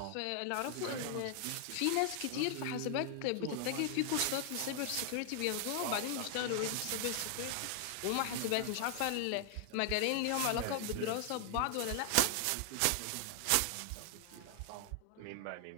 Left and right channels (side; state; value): both; different; correlation 0.00